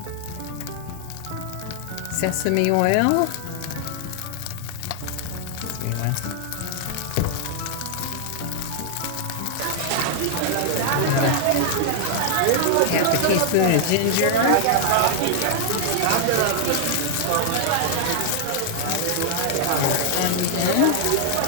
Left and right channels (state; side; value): different; both; correlation -0.01